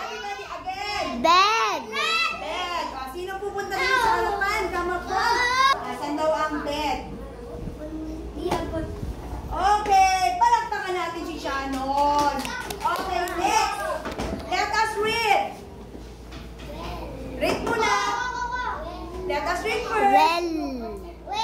again. Bed. Bed. O, sino pupunta dito sa harapan? Come up front. Asan daw ang bed? Okay, palakpakan natin si Shannon. Okay, next. Let us read. Read muna. Let us read first. Well.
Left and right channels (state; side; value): identical; both; correlation 1.00